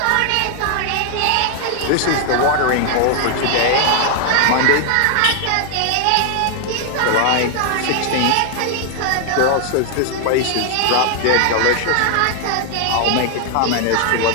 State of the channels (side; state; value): both; different; correlation 0.00